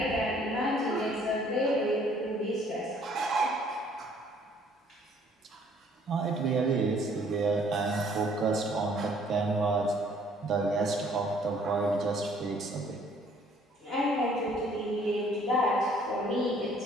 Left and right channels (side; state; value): both; normal; correlation 0.60